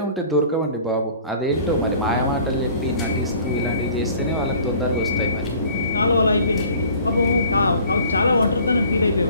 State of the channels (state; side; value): inverted; both; correlation -0.50